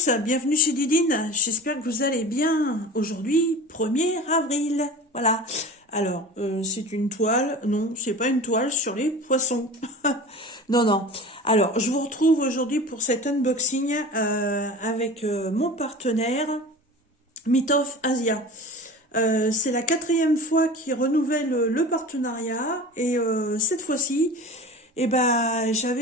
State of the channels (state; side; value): normal; both; correlation 0.36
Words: bienvenue chez Didine, j'espère que vous allez bien. Aujourd'hui, 1er avril, voilà. Alors, c'est une toile, non, c'est pas une toile sur les poissons. Non, non. Alors, je vous retrouve aujourd'hui pour cet unboxing avec mon partenaire, Mitov Asia. C'est la 4e fois qu'il renouvelle le partenariat et cette fois-ci,